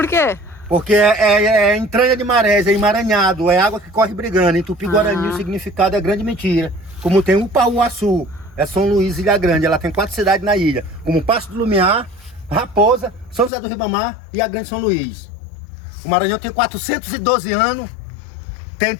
quê? Porque é entranha de marés, é emaranhado, é água que corre brigando. Em Tupi-Guarani o significado é grande mentira. Como tem Upauaçu, é São Luís, Ilha Grande, ela tem 4 cidades na ilha, como Passo do Lumiar, Raposa, São José do Ribamar e a Grande São Luís. O Maranhão tem 412 anos, tem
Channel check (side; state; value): right; drops out; at 13.5 s